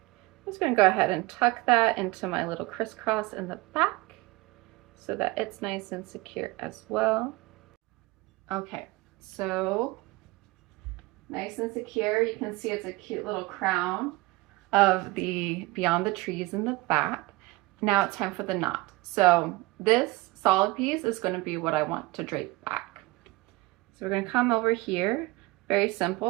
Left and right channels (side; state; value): left; quieter; 20.9 dB